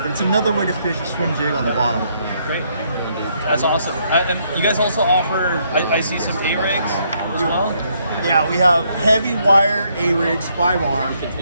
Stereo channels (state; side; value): inverted; both; correlation -0.72